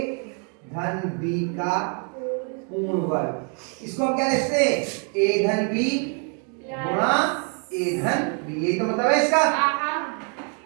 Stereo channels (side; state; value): left; quieter; 40.0 dB